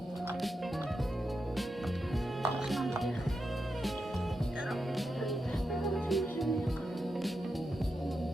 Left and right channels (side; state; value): both; normal; correlation 0.87